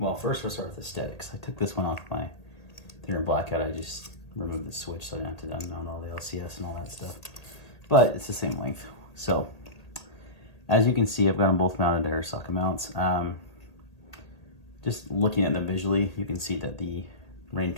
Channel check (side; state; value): right; late; 1.8 ms